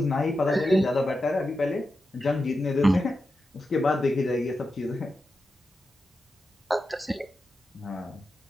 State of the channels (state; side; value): normal; both; correlation 0.90